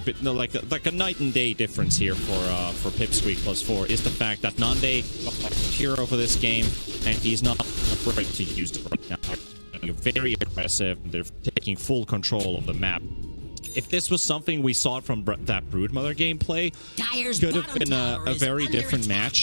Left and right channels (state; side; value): inverted; both; correlation -1.00